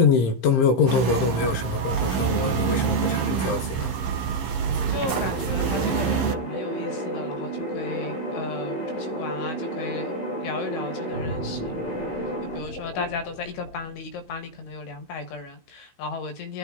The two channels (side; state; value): right; late; 15 ms